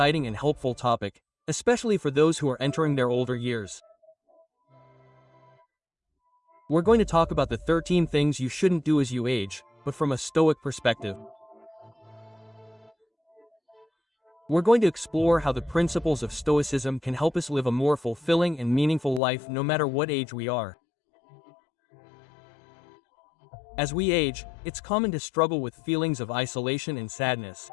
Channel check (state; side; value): drops out; right; at 19.2 s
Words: and helpful topic, especially for those who are entering their older years. We're going to talk about the 13 things you shouldn't do as you age, but from a Stoic perspective. We're going to explore how the principles of Stoicism can help us live a more fulfilling and meaningful life no matter what age we are. As we age, it's common to struggle with feelings of isolation and sadness.